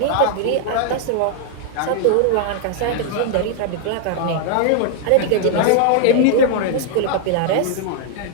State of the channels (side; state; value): both; different; correlation 0.00